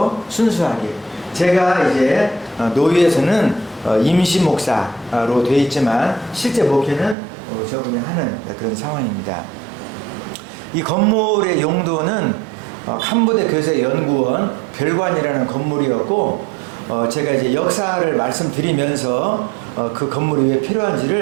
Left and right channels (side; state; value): left; drops out; at 7.2 s